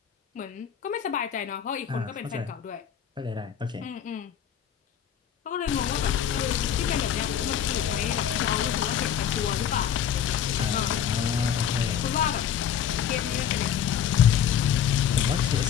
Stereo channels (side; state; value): right; quieter; 9.0 dB